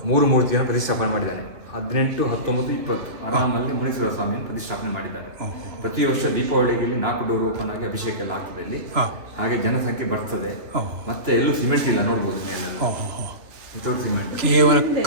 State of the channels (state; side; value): late; left; 2.9 ms